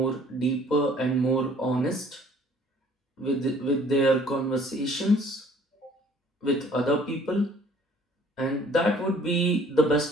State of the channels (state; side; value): normal; both; correlation 0.56